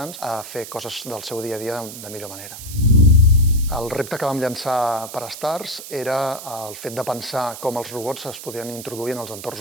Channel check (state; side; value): noise; right; hiss, 12 dB below the sound